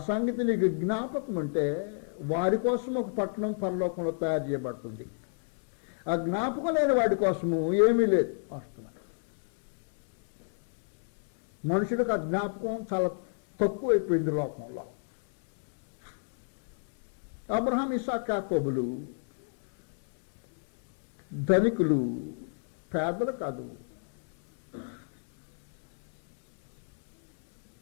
సంగతి నీకు జ్ఞాపకం ఉంటే వారి కోసం ఒక పట్టణం పరలోకంలో తయారు చేయబడుతుంది. ఆ జ్ఞాపకం లేని వాడి కోసము ఏమీ లేదు. వాస్తవం మనుషులకు ఆ జ్ఞాపకం చాలా తక్కువైపోయింది లోకంలో. అబ్రహాం, ఇస్సాకు, యాకోబులు ధనికులు, పేదలు కాదు.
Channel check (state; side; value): silent; right; digital silence